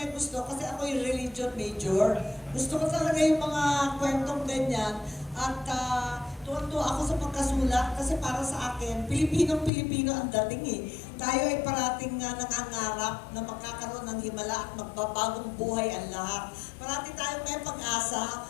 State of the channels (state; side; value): drops out; right; at 9.7 s